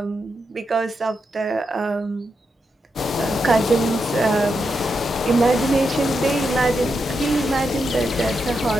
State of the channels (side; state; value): both; normal; correlation 0.84